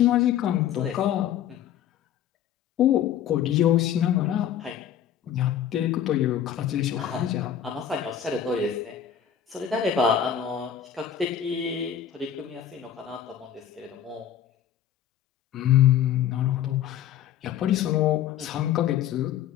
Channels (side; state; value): right; quieter; 9.6 dB